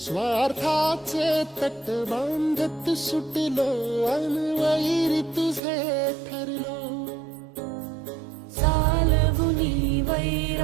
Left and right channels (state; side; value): drops out; left; at 5.6 s